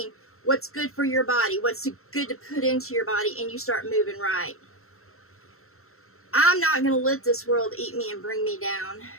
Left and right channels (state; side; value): late; right; 0.63 ms